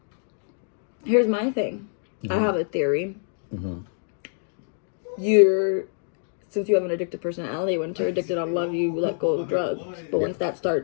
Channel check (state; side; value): silent; right; digital silence